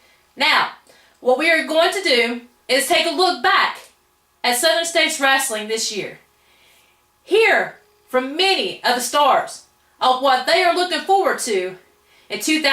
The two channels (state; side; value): identical; both; correlation 1.00